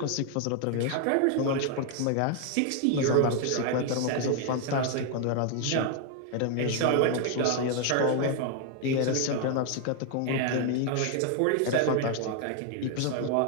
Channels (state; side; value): different; both; correlation 0.00